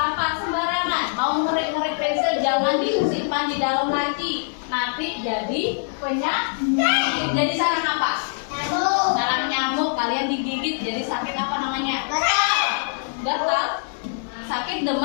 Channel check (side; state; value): right; silent; digital silence